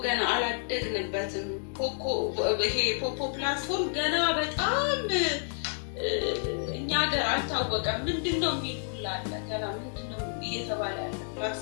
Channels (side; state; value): right; silent; digital silence